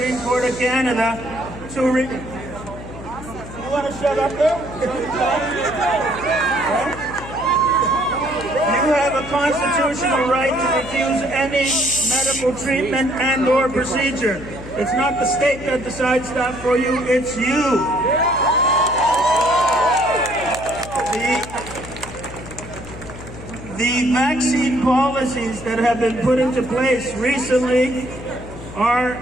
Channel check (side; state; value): left; noise; hum, 13 dB below the sound